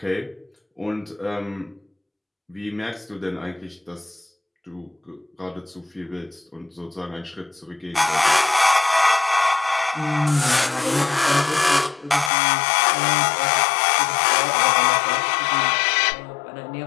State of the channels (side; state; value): right; drops out; at 12.3 s